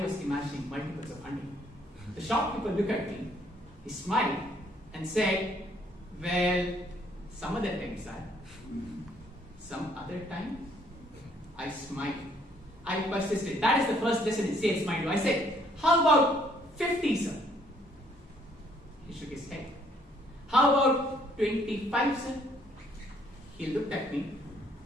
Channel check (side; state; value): both; normal; correlation 0.65